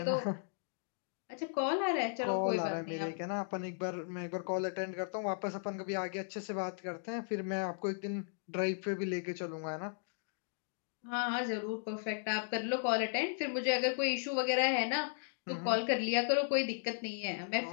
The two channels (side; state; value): right; silent; digital silence